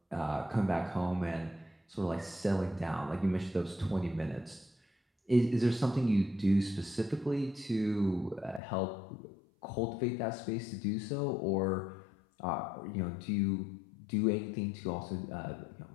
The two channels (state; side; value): drops out; right; at 8.6 s